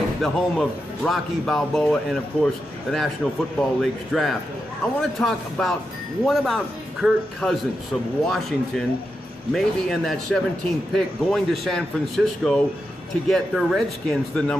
the home of Rocky Balboa and, of course, the National Football League's draft. I want to talk about, what about Kirk Cousins of Washington, maybe in that 17th pick, going to San Francisco to get the Redskins the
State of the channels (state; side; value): normal; both; correlation 0.87